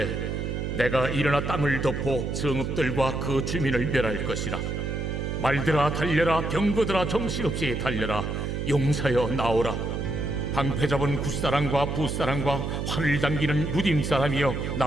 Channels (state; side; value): noise; right; hum, 3 dB below the sound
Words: 내가 일어나 땅을 덮어 성읍들과 그 주민을 멸할 것이라. 말들아 달려라, 병거들아 정신없이 달려라. 용사여 나오라. 방패 잡은 굿사람과 붓사람과 활을 당기는 무딤 사람이여